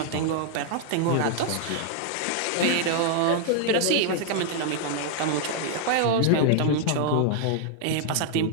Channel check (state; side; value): different; both; correlation 0.00